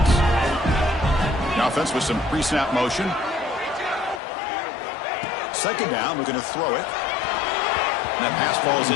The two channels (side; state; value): right; drops out; at 4.2 s